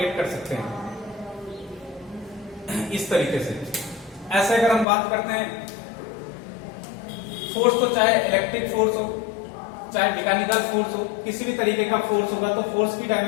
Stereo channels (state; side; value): drops out; right; at 4.9 s